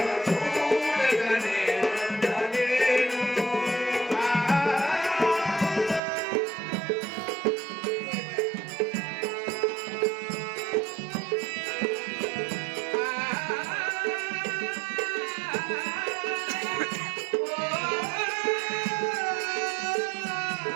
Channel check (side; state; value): left; drops out; at 6.0 s